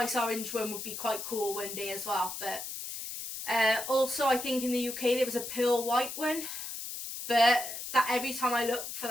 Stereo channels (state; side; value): noise; left; hiss, 7 dB below the sound